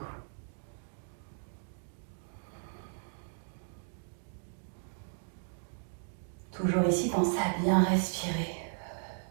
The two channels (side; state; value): left; silent; digital silence